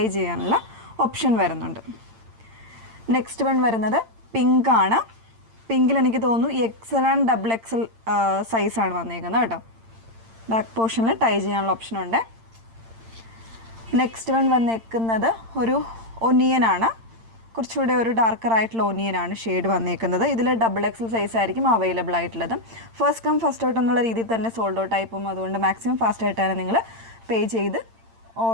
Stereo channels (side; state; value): left; late; 8.8 ms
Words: ചെയ്യാനുള്ള ഓപ്ഷൻ വരുന്നുണ്ട്. നെക്സ്റ്റ് വൺ വരുന്നത് പിങ്ക് ആണ്. പിങ്കിൽ എനിക്ക് തോന്നുന്നു XL ആൻഡ് XXL സൈസാണ് വന്നേക്കുന്നത് കേട്ടോ. ബാക്ക് പോർഷനിൽ ടൈ ചെയ്യാനുള്ള ഓപ്ഷനുണ്ട്. നെക്സ്റ്റ് വൺ വന്നേക്കുന്നത് ഒരു ഒനിയനാണ്. കുറച്ചുകൂടെ ഒരു ഡാർക്കർ ആയിട്ടുള്ള ഒനിയനാണ് ഷെയ്ഡ് വന്നേക്കുന്നത്. ഇതിൽ XXL സൈസ് ആയിരിക്കും അവൈലബിൾ ആയിട്ടുള്ളത്. ഫസ്റ്റ് കം ഫസ്റ്റ് ഔട്ട് എന്നുള്ള രീതിയിൽ തന്നെ സോൾഡ് ഔട്ട് ആയി പോകും. അതുകൊണ്ട് മാക്സിമം ഫാസ്റ്റ് ആയിട്ടാണ് നിങ്ങൾ പേ ചെയ്ത്